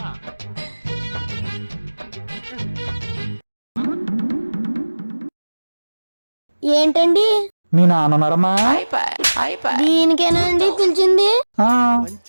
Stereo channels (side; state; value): both; inverted; correlation -1.00